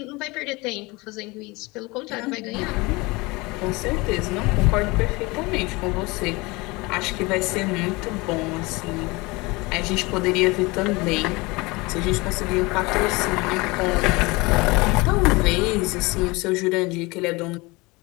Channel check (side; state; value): right; quieter; 24.3 dB